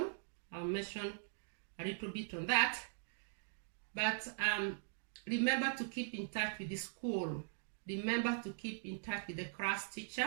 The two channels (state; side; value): silent; left; digital silence